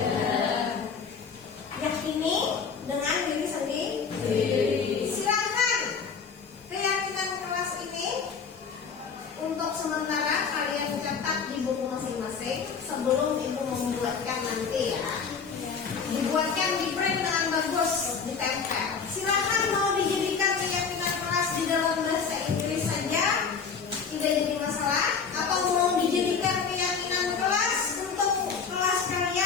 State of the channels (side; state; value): right; quieter; 5.9 dB